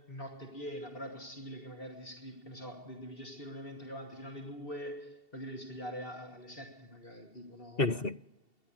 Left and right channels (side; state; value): right; late; 2.7 ms